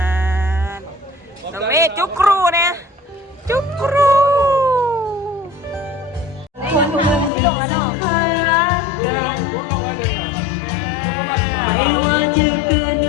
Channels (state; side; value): drops out; right; at 7.3 s